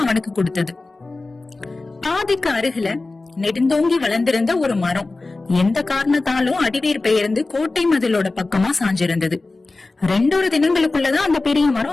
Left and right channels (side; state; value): right; quieter; 3.4 dB